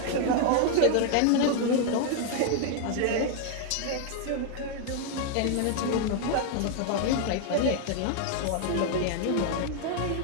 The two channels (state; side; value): different; both; correlation 0.00